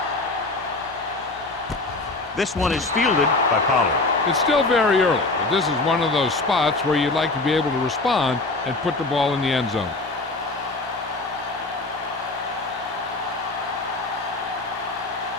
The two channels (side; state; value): right; quieter; 3.2 dB